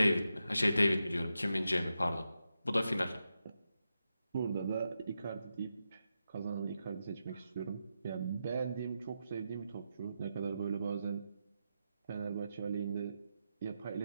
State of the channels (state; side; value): inverted; both; correlation -0.88